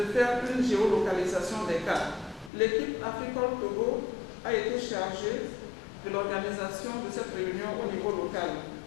faire une géolocalisation des cas. L'équipe Africol Togo a été chargée de l'organisation de cette réunion au niveau local.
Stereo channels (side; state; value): right; drops out; at 2.5 s